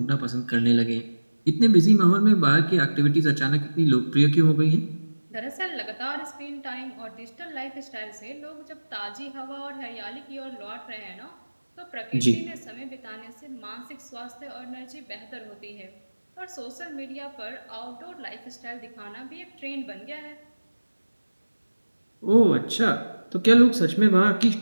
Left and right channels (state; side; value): inverted; both; correlation -1.00